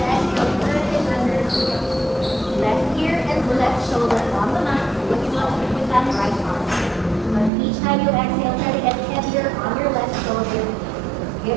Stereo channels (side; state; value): left; drops out; at 7.5 s